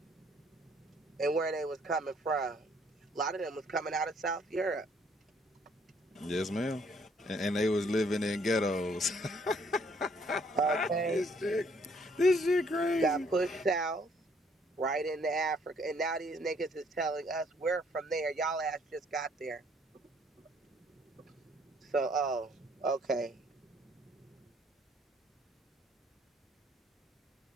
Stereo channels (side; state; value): both; normal; correlation 0.64